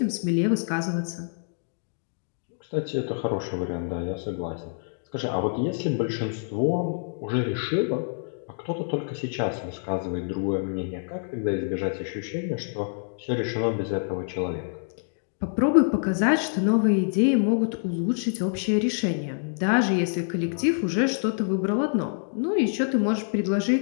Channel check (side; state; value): right; silent; digital silence